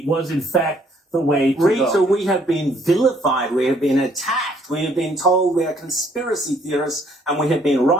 was, in fact, the way to go. Rita, we have been vilified, we have been attacked, we have been told we are conspiracy theorists, and we have been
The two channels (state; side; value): normal; both; correlation 0.64